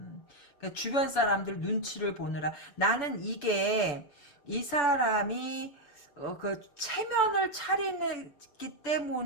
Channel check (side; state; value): right; late; 6.9 ms